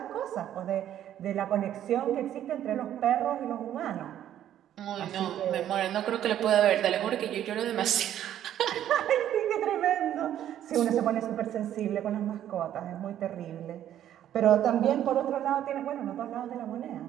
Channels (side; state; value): left; quieter; 11.2 dB